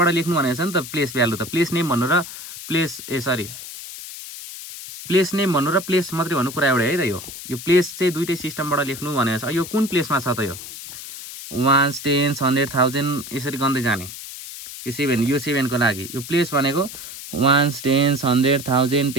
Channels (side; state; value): left; noise; hiss, 11 dB below the sound